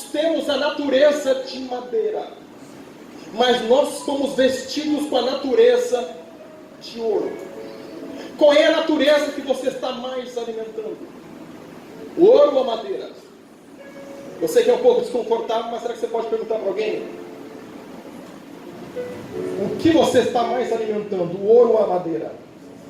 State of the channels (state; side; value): identical; both; correlation 1.00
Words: temos a natureza de madeira, mas nós somos vestidos com a natureza de ouro. Qual é a natureza que você está mais alimentando? O ouro ou a madeira? Eu sei que é um pouco desconfortável, mas será que você pode perguntar para alguém? O que você está mais alimentando? O ouro ou a madeira?